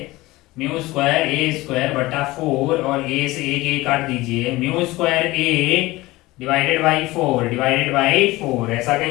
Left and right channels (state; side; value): quieter; right; 19.6 dB